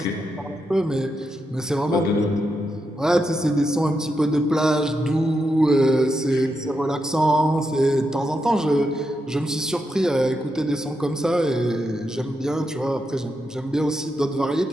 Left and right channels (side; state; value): both; normal; correlation 0.84